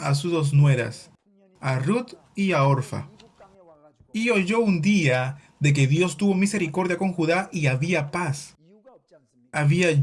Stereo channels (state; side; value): identical; both; correlation 1.00